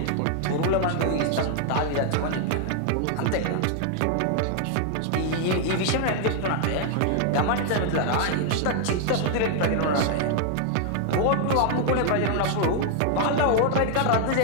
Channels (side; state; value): both; different; correlation 0.00